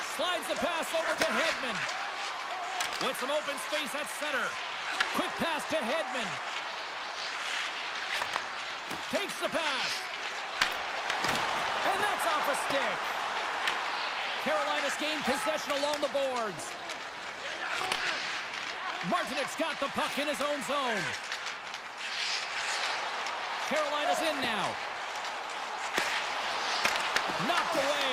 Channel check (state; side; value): identical; both; correlation 1.00